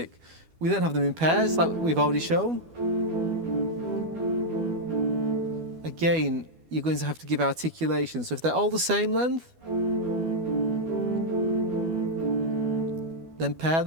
We then have them in pairs, like we've already shown. Again, you're going to have to give articulation. So if they're all the same length, then pair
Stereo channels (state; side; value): late; left; 12 ms